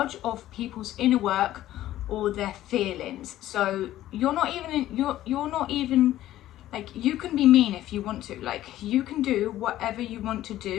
of people's inner work or their feelings. So you're not even like, you can be mean if you want to. Like, you can do whatever you want to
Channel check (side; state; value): right; quieter; 13.9 dB